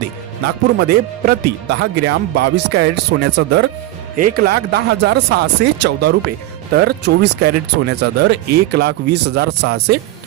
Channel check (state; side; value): quieter; left; 15.9 dB